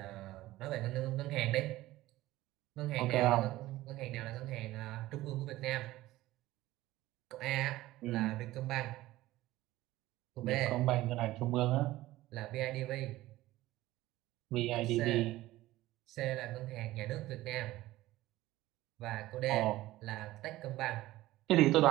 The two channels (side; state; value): left; quieter; 16.8 dB